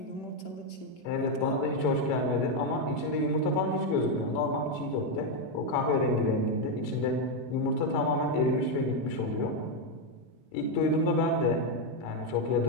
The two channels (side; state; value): right; late; 5.1 ms